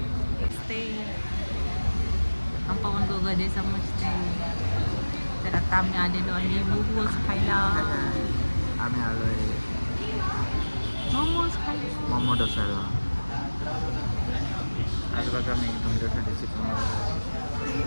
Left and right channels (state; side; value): inverted; both; correlation -1.00